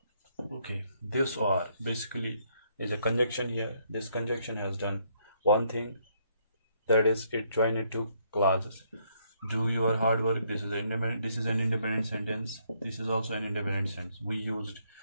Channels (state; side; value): inverted; both; correlation -0.71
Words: Okay, this or basically is a conjunction here. This conjunction has done one thing, that is it joined two clauses. Do your hard work. This is an independent sentence. This is also an independent sentence. We used